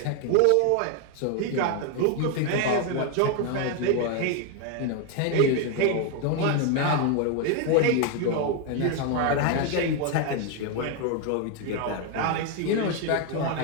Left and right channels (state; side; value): different; both; correlation 0.01